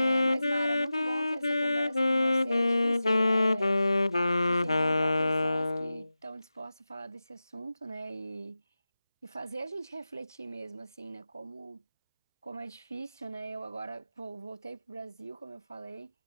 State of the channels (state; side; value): inverted; both; correlation -0.94